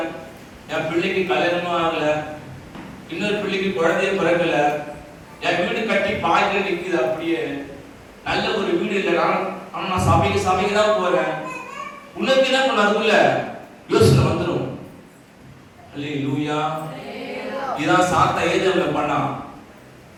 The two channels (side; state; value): both; identical; correlation 1.00